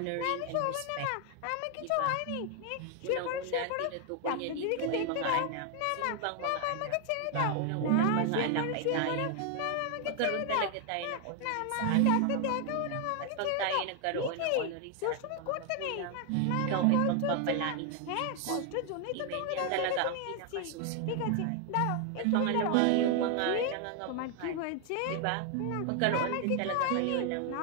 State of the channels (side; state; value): both; different; correlation 0.00